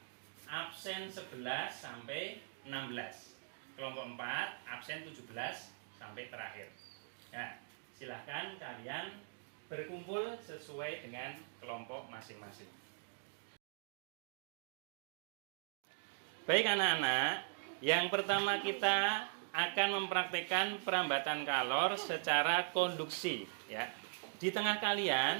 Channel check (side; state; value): left; silent; digital silence